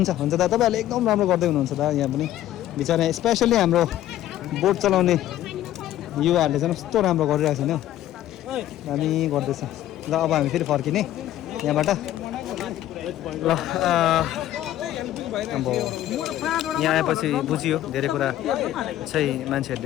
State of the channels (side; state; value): right; quieter; 13.1 dB